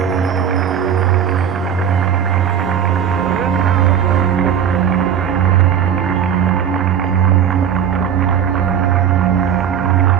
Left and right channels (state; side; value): quieter; left; 8.6 dB